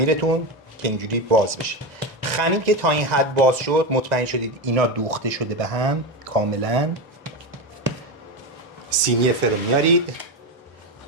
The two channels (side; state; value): both; normal; correlation 0.15